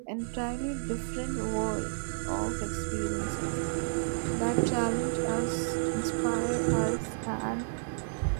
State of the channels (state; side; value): silent; left; 57 dB below the other